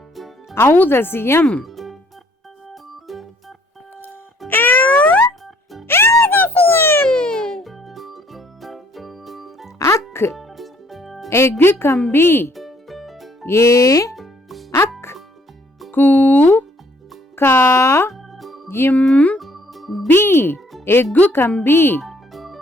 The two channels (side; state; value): both; normal; correlation 0.63